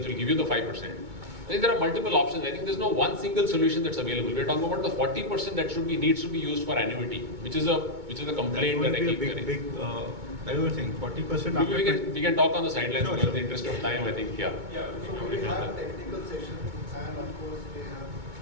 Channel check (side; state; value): left; late; 2.2 ms